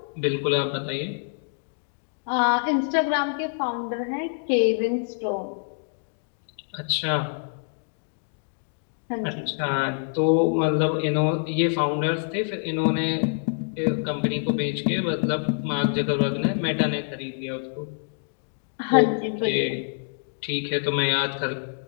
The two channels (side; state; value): right; silent; digital silence